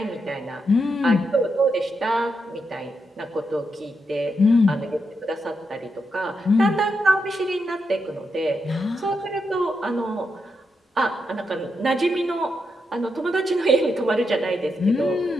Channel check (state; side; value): normal; both; correlation 0.84